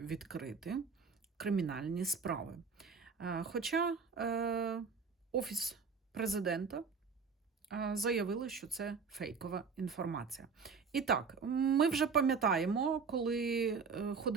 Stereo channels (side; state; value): left; quieter; 5.4 dB